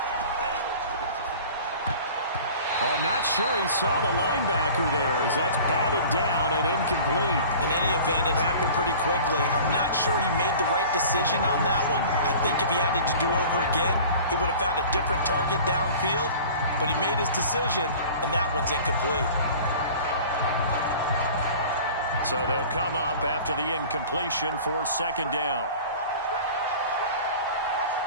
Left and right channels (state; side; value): inverted; both; correlation -0.42